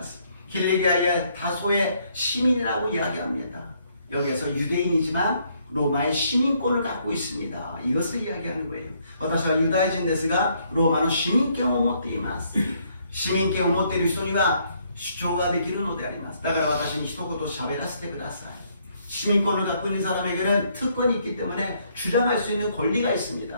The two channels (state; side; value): inverted; both; correlation -0.69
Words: す。 길리기아의 다소의 시민이라고 이야기합니다. 여기에서 유대인이지만 로마의 시민권을 갖고 있습니다. 이것을 이야기하는 거예요. 私はユダヤ人ですがローマの市民権を持っています。市民権を持っている人には主張ができるのであります。だから私に一言喋らせてください。 시민권을 갖고 있는 사람에게는 특권이 있기 때문에 주장할 수 있는 권리가 있습니다.